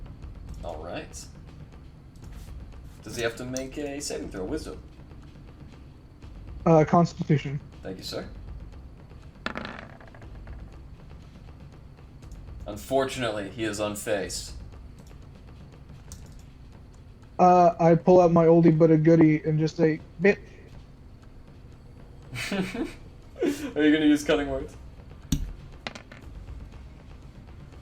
Alright. Does he have to make a saving throw? Wisdom? Constitution. Thank you, sir. Unfortunately, he is unfazed. I pull out my oldie but a goodie and just say, bit. Are you going to use cutting words?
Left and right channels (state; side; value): identical; both; correlation 1.00